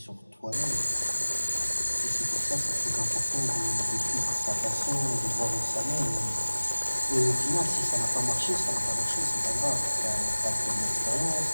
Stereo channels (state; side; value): inverted; both; correlation -1.00